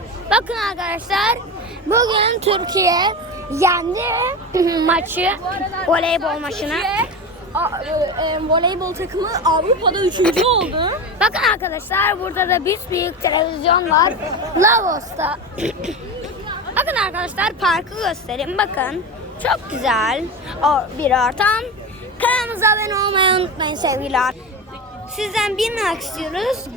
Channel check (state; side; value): normal; both; correlation 0.23